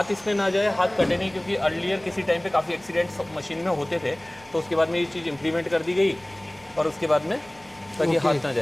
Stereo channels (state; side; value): noise; right; rumble, 26 dB below the sound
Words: इसमें ना जाए, हाथ कटे नहीं, क्योंकि अर्लियर किसी टाइम पे काफ़ी एक्सीडेंट्स मशीन में होते थे, तो उसके बाद में ये चीज़ इंप्लीमेंट कर दी गई और उसके बाद में ताकि हाथ ना